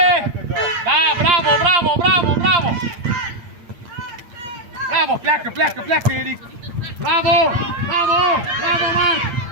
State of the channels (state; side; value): late; left; 8.6 ms